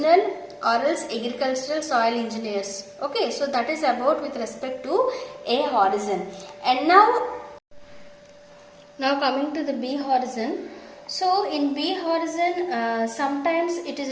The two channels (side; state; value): both; identical; correlation 1.00